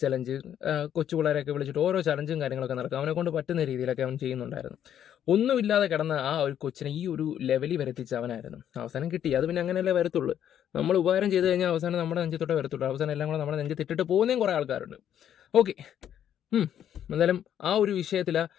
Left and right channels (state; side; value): quieter; right; 10.0 dB